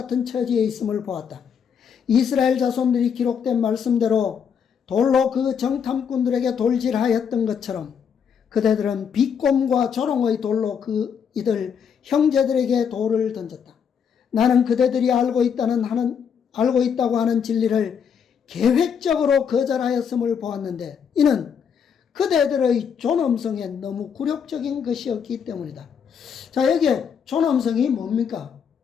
처지에 있음을 보았다. 이스라엘 자손들이 기록된 말씀대로 돌로 그 정탐꾼들에게 돌질하였던 것처럼 그대들은 비꼼과 조롱의 돌로 이들 형제들에게 돌을 던졌다. 나는 그대들이 알고 있다고 하는 진리를 계획적으로 거절하였음을 보았는데 이는 그대들의 존엄성에 너무 굴욕적인 것이었기 때문이다. 자, 여기에 존엄성이 뭡니까?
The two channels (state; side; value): quieter; right; 7.2 dB